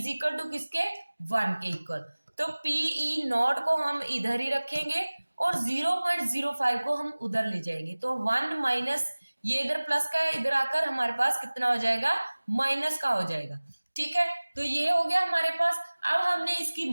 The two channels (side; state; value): both; inverted; correlation -1.00